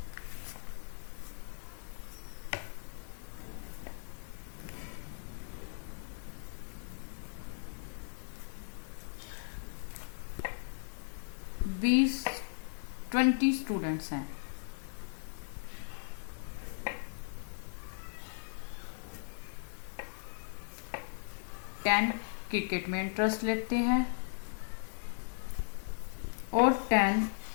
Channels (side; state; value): right; silent; digital silence